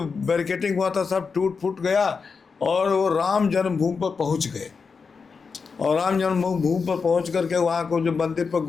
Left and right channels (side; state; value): right; quieter; 5.2 dB